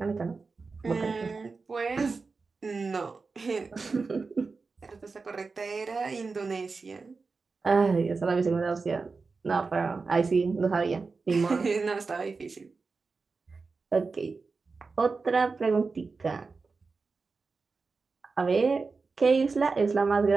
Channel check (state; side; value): quieter; left; 4.3 dB